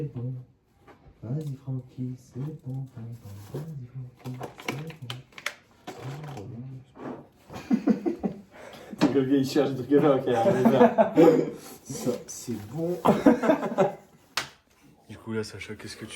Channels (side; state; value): both; identical; correlation 1.00